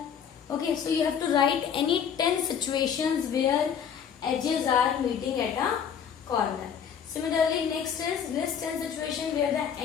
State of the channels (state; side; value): quieter; right; 7.8 dB